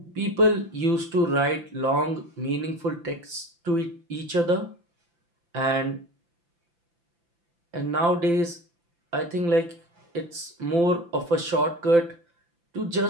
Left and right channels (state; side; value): late; left; 5.9 ms